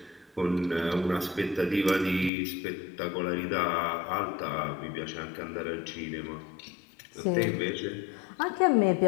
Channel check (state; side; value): drops out; right; at 2.3 s